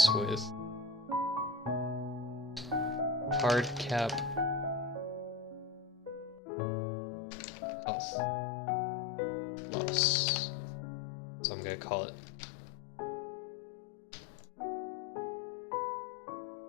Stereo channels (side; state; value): right; drops out; at 6.4 s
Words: with hard cap health loss. So I'm gonna call it.